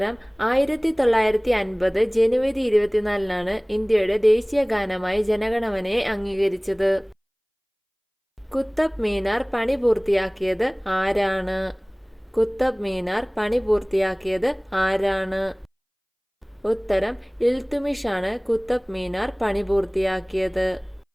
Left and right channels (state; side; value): identical; both; correlation 1.00